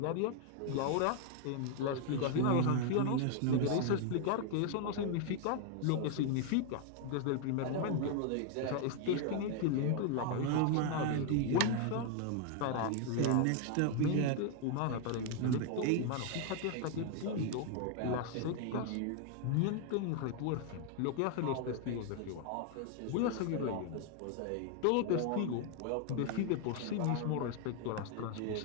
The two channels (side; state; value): both; different; correlation 0.00